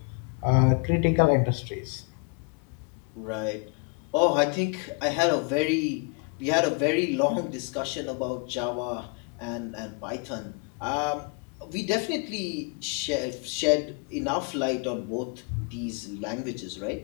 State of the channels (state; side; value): quieter; right; 34.3 dB